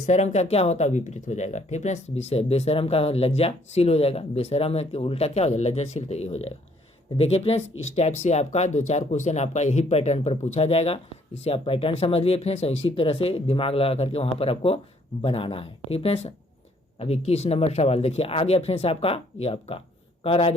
का क्या होता है, विपरीत हो जाएगा। ठीक फ्रेंड्स, बेशर्म का लज्जाशील हो जाएगा, बेशर्म है कि उल्टा क्या हो जाएगा, लज्जाशील, तो ये हो जाएगा। तो देखिए फ्रेंड्स इस टाइप से आपका 2-4 क्वेश्चन आपका यही पैटर्न पर पूछा जाएगा। इससे आप पैटर्न समझ लिए फ्रेंड्स, और इसी तरह से दिमाग लगा करके वहाँ पर आपको बनाना है। ठीक फ्रेंड्स, अब 21 नंबर सवाल देखिए आ गया फ्रेंड्स आपका, ये आपका कह रहा है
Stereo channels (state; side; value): normal; both; correlation 0.64